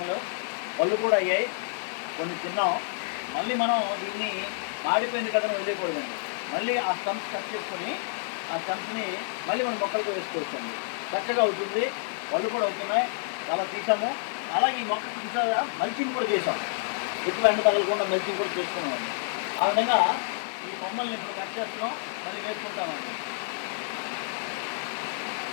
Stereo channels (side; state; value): right; silent; 59 dB below the other